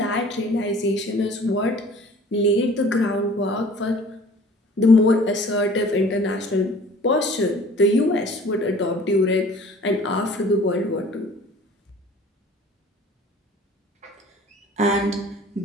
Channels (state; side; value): normal; both; correlation 0.49